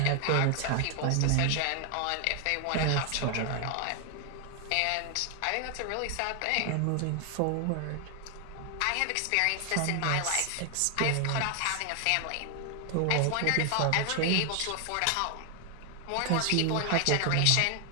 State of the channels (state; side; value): different; both; correlation 0.00